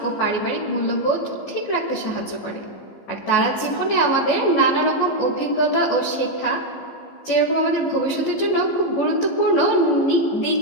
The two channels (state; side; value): late; right; 15 ms